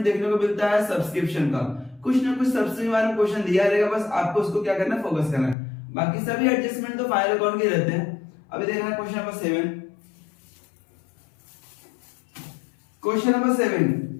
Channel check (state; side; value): drops out; right; at 5.6 s